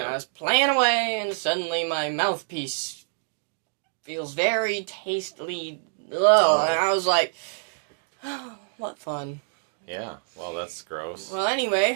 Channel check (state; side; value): silent; left; digital silence